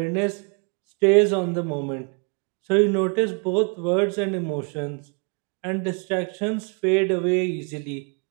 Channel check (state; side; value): quieter; left; 36.6 dB